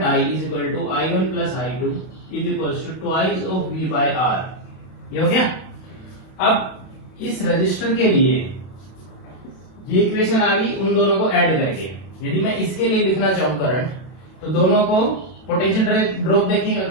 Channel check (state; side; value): late; right; 32 ms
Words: I is equal to I1 plus I2 is equal to twice of V by R। ये हो गया। अब इस रजिस्टर के लिए ये इक्वेशन आ गई उन दोनों को ऐड करके। यदि मैं इसके लिए लिखना चाहूं करंट, तो दोनों को पोटेंशियल ड्रॉप देखेंगे